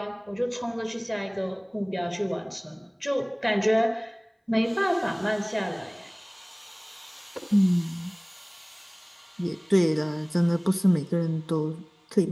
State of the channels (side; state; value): both; identical; correlation 1.00